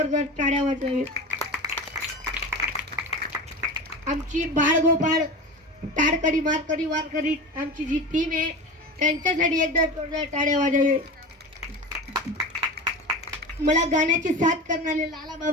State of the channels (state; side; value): normal; both; correlation 0.29